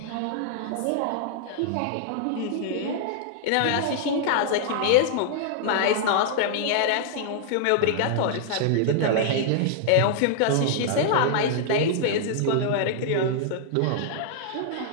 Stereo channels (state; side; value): different; both; correlation -0.01